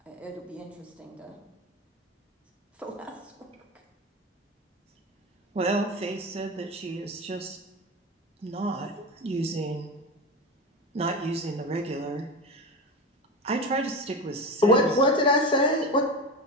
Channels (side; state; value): both; normal; correlation 0.24